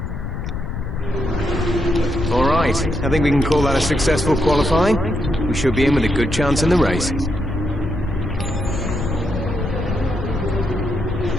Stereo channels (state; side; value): noise; left; rumble, 5 dB below the sound